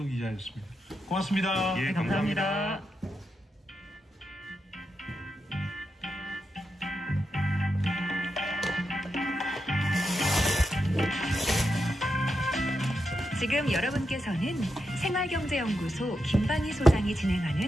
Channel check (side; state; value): both; normal; correlation 0.86